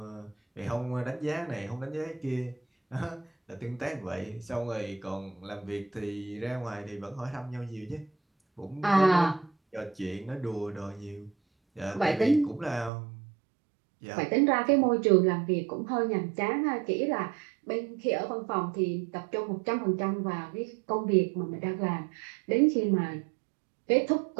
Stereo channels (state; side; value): drops out; left; at 12.9 s